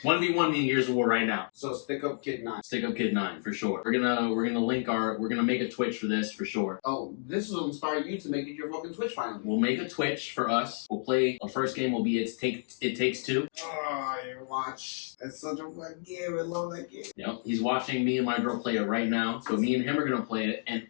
1v1 me in Years of War right now. So Stick Up Kid 9. Stick Up Kid 9 for sure. We're gonna make a Twitch for this for sure. Oh, this will inspire you to make it your fucking Twitch finally. We'll make a Twitch for us. We'll play. Our first game will be It Takes Two. Oh, you watch. That's such a fun game. I love that game. Yep. He's watching me and my girl play it right now. So me and him are gonna play it. And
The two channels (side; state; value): right; silent; digital silence